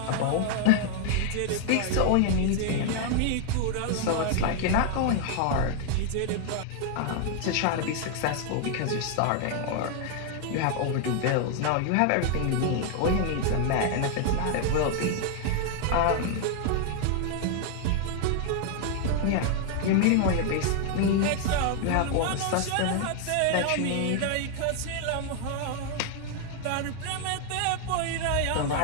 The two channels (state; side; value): different; both; correlation 0.00